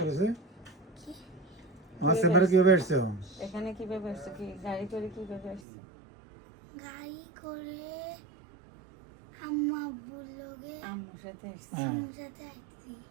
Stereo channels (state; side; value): drops out; left; at 5.6 s